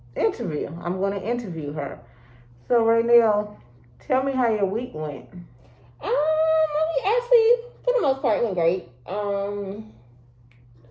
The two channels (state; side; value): identical; both; correlation 1.00